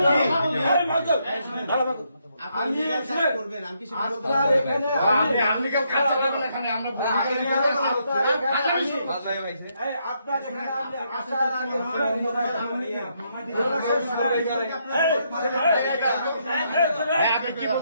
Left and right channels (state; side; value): inverted; both; correlation -0.76